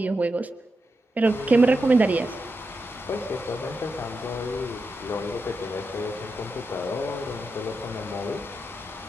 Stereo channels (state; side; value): normal; both; correlation 0.87